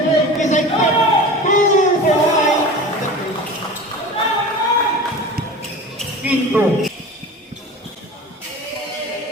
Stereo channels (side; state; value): both; normal; correlation 0.35